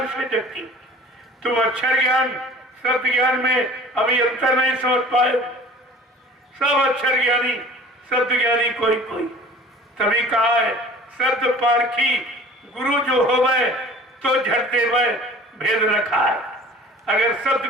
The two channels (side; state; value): both; normal; correlation 0.46